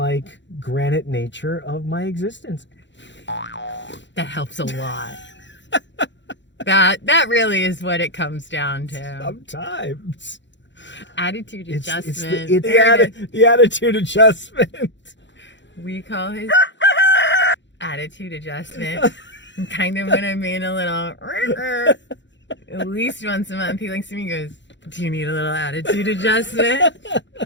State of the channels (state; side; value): late; right; 0.53 ms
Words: granite nature of my existence. That helps a lot. That really is what it comes down to. Sometimes. Attitude adjustment. It's the attitude adjustment. We call it attitude adjustment. And kind of when I'm being a little, at least once a month, he looks at me and goes, do you need a little attitude adjustment?